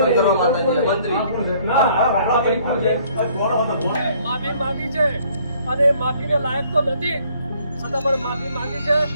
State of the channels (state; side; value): inverted; both; correlation -0.61